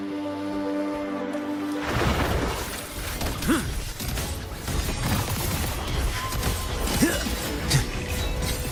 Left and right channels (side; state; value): both; identical; correlation 1.00